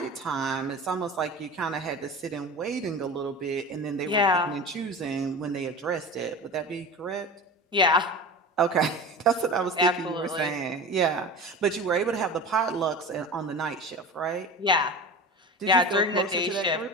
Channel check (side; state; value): both; normal; correlation 0.31